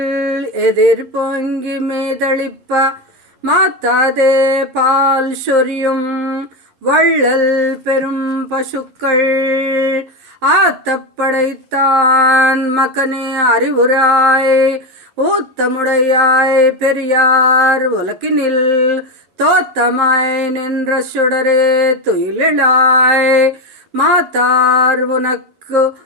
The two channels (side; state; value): left; late; 11 ms